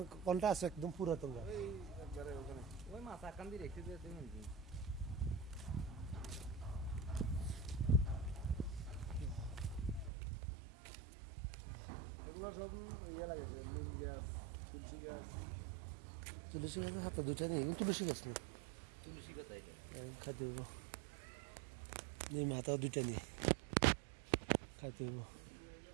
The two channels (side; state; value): left; drops out; at 10.1 s